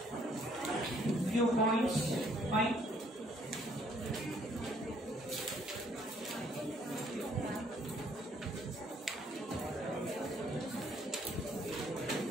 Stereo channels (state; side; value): normal; both; correlation 0.64